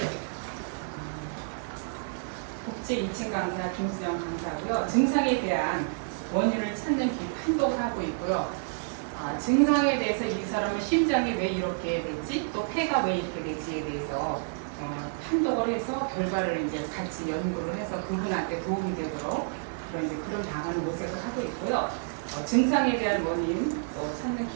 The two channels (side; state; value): left; silent; 58 dB below the other